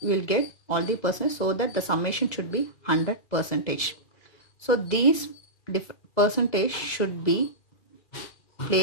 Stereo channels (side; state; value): right; late; 2.0 ms